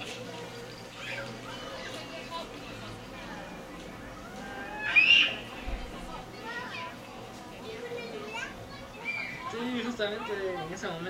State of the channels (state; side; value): identical; both; correlation 1.00